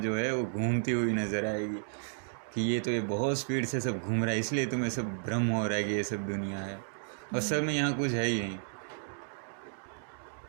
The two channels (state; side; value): silent; left; digital silence